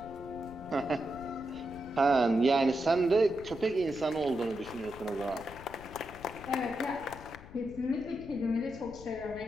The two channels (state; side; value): noise; left; rumble, 16 dB below the sound